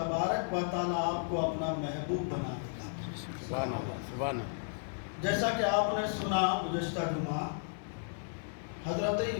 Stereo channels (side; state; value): right; silent; digital silence